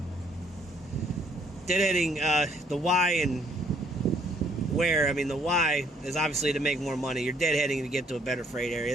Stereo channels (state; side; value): normal; both; correlation 0.65